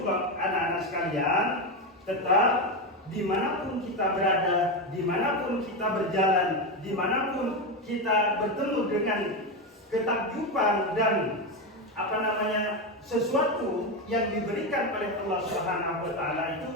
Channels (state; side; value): normal; both; correlation 0.12